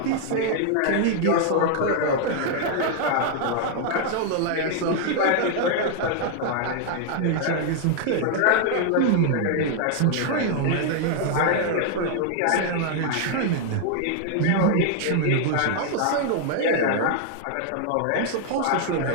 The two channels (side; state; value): both; different; correlation 0.00